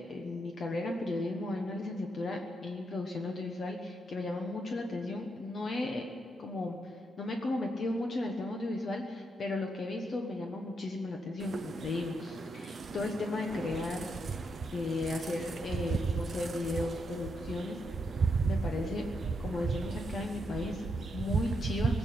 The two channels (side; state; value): both; normal; correlation 0.80